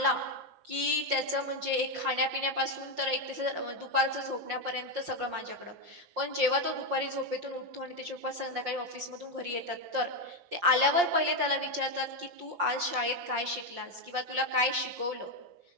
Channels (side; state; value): left; late; 5.6 ms